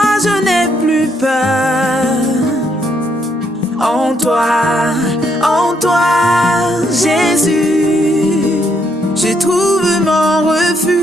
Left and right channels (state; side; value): normal; both; correlation 0.74